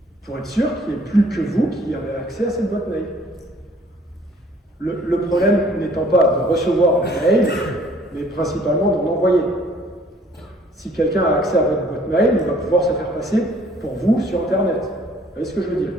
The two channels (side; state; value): both; normal; correlation 0.58